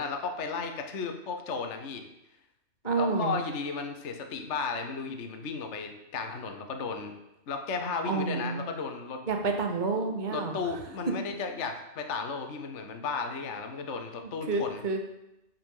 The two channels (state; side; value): late; right; 3.3 ms